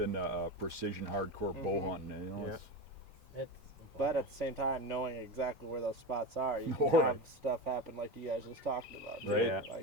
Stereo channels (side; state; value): both; normal; correlation 0.23